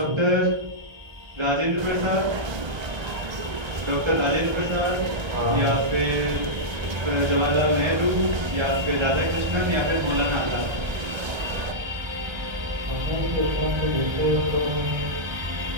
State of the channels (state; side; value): late; left; 1.3 ms